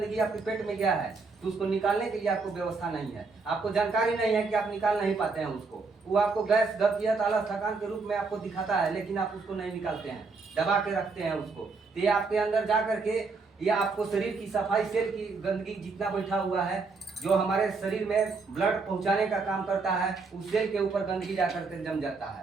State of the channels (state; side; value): quieter; left; 4.3 dB